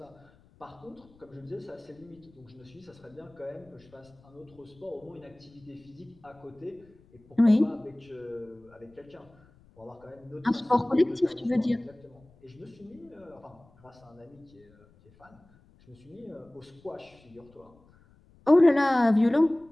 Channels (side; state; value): left; noise; rumble, 28 dB below the sound